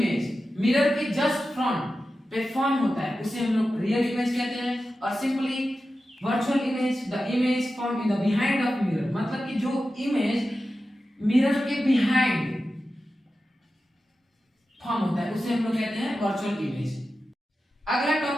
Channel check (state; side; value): normal; both; correlation 0.93